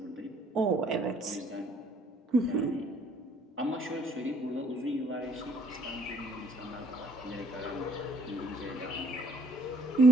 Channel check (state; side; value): normal; both; correlation 0.62